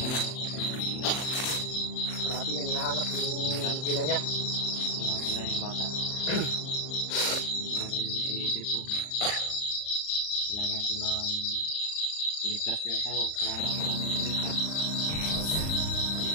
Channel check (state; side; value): late; right; 39 ms